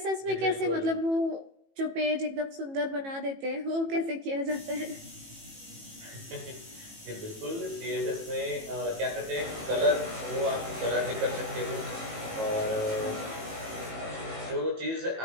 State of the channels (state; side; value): late; left; 18 ms